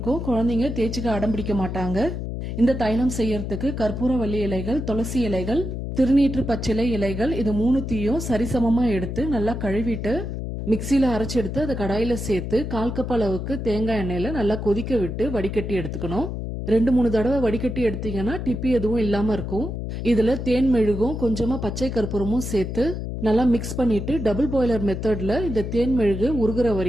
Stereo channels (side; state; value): left; noise; hum, 5 dB below the sound